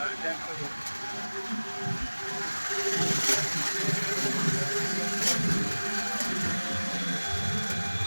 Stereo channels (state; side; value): inverted; both; correlation -1.00